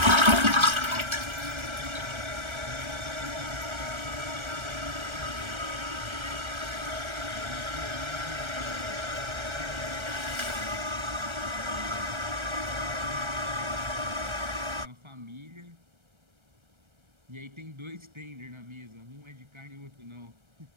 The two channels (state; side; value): late; left; 1.3 ms